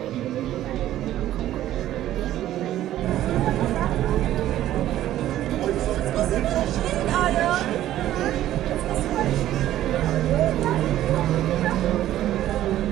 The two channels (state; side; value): quieter; left; 13.2 dB